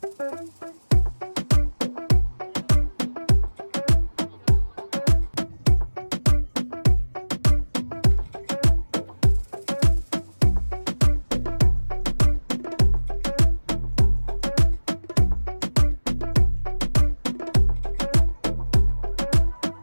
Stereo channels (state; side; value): inverted; both; correlation -1.00